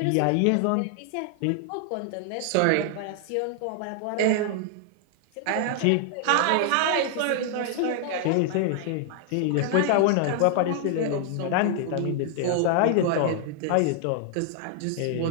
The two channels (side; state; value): both; different; correlation 0.00